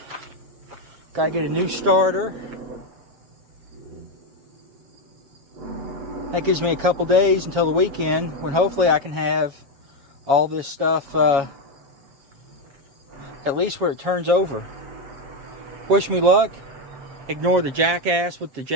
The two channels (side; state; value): left; late; 7.4 ms